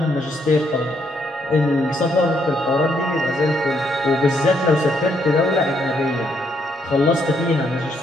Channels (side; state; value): both; normal; correlation 0.73